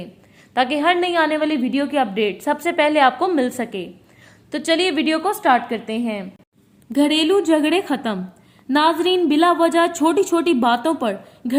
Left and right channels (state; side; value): identical; both; correlation 1.00